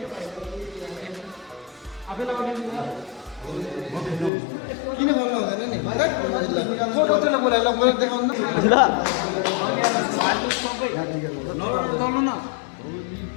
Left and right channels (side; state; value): right; drops out; at 4.3 s